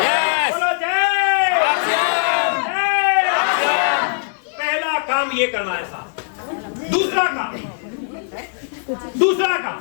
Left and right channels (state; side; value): silent; right; digital silence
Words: बोलो जय। पहला काम ये करना है साहब। दूसरा काम